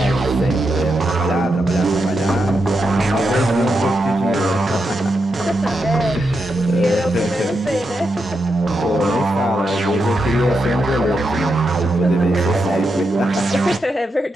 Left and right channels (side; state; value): both; normal; correlation 0.85